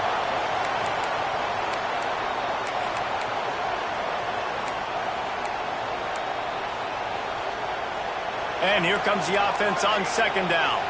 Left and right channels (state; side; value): identical; both; correlation 1.00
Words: And here comes the offense on second down.